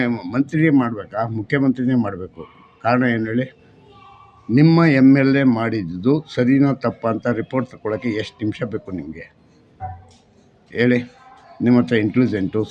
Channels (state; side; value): identical; both; correlation 1.00